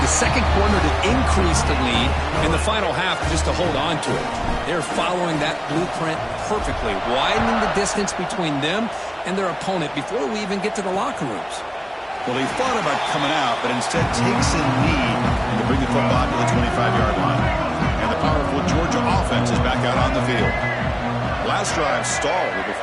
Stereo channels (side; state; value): both; identical; correlation 1.00